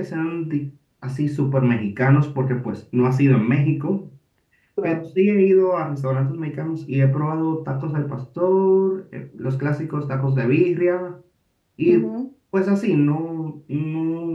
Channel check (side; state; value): both; identical; correlation 1.00